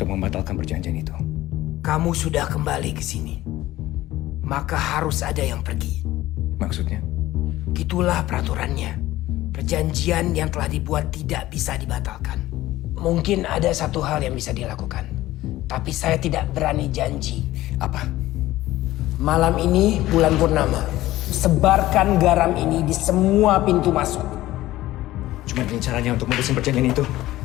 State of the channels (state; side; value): quieter; right; 16.1 dB